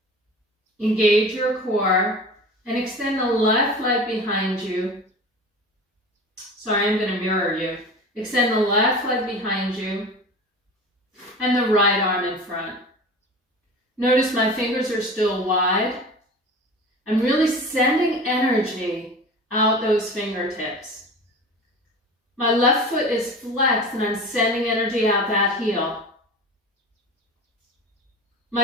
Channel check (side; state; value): both; normal; correlation 0.35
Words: Engage your core and extend the left leg behind you. Sorry, I'm going to mirror you. Extend the left leg behind you and the right arm in front. Notice my fingers are still wide. I'm really sending energy out those fingertips. My left foot is flexed and I'm sending energy out that heel.